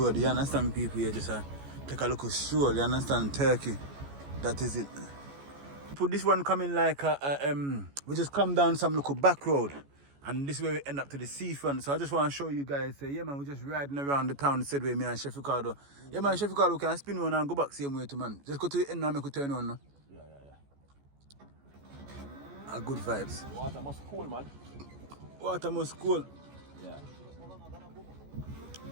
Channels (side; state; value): left; late; 14 ms